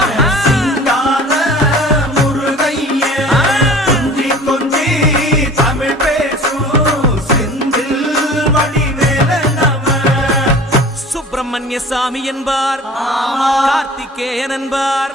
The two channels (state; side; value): normal; both; correlation 0.43